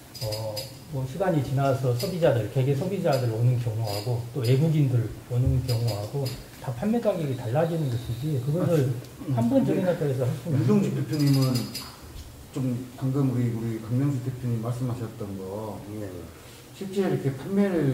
뭐 시간이 지나서 소비자들, 개개 소비자들 오는 경우하고 또 외국인들 오는 경우하고 다 판매 가격이 달라지는 것이지 그것을 한 번 정해놨다 해서 할 수는 유동식 대표님은 좀 방금 우리 강명수 대표님 말씀하셨던 거 실제 이렇게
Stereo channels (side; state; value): both; identical; correlation 1.00